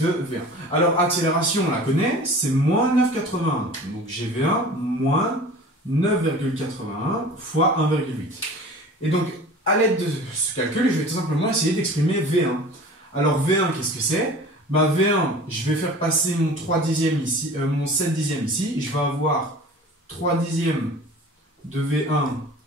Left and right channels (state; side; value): normal; both; correlation 0.41